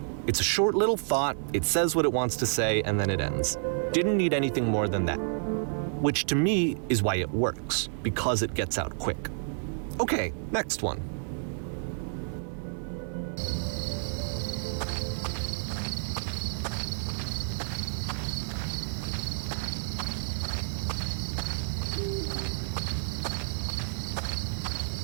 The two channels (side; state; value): left; silent; 58 dB below the other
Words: It's a short little thought, it says what it wants to say, and then it ends. Didn't need anything more than that. Which to me is why it works, because it gets out quick. Okay, next one.